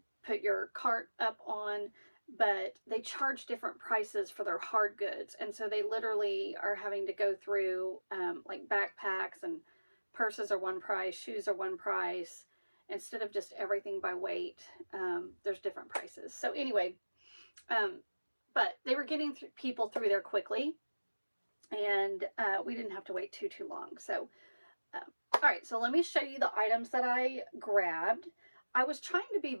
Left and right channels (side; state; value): both; inverted; correlation -1.00